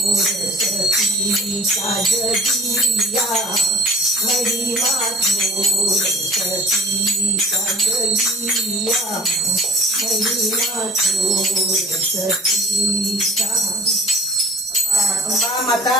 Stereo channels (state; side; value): normal; both; correlation 0.46